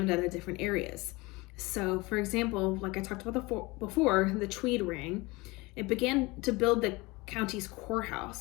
out of different areas. So, for example, like I talked about before, the Tweed Ring, it began to build the county's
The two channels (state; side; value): quieter; right; 23.4 dB